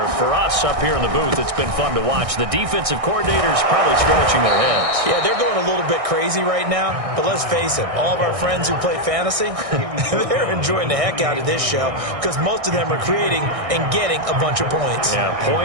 For us up here in the booth, it's been fun to watch. The defensive coordinators probably scratching their heads. Yeah, they're going a little bit crazy right now. But let's face it, all of our friends who play fantasy, they're enjoying the heck out of this show because most of them are creating and getting a bunch of points. Yeah,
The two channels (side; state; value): left; late; 1.6 ms